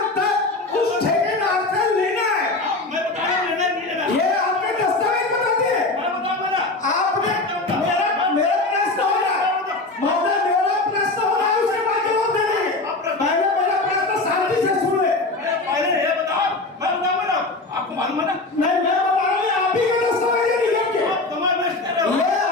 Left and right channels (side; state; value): right; quieter; 3.1 dB